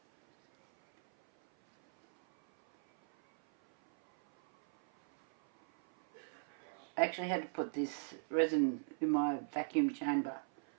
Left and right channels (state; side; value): silent; left; 53 dB below the other